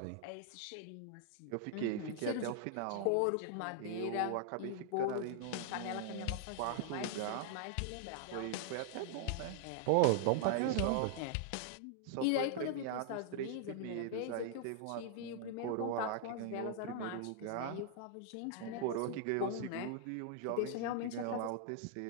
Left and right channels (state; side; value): different; both; correlation -0.01